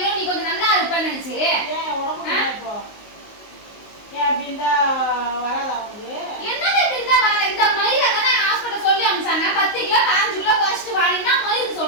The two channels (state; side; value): late; right; 19 ms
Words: நீ கொஞ்சம் நல்லா இருப்பேன்னு நினைச்சு. ஏன் உடம்பு இப்போ ஏன் அப்படி இருந்தா வராதா உனக்கு? என்னது இப்படி இருந்தா வர? இந்த மயிரை தானே ஹாஸ்பிட்டல் சொல்லி அனுப்பிச்சாங்க. 10 கிலோ 5 கிலோ குறைச்சிட்டு வாடினா மயிறு